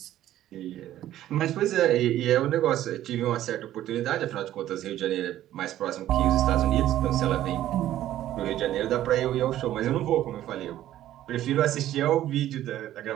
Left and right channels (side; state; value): left; quieter; 13.0 dB